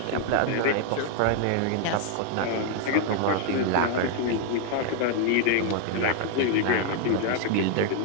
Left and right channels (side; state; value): both; different; correlation 0.00